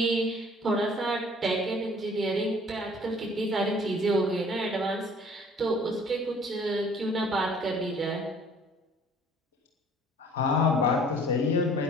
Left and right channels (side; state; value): both; normal; correlation 0.54